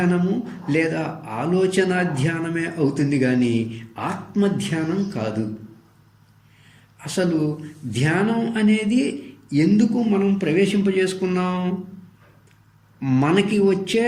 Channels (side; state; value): both; identical; correlation 1.00